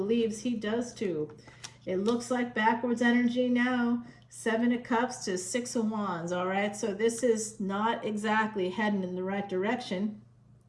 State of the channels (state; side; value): identical; both; correlation 1.00